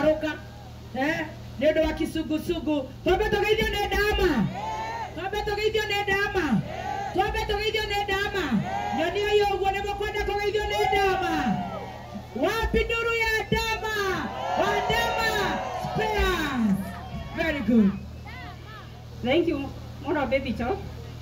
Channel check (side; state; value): both; identical; correlation 1.00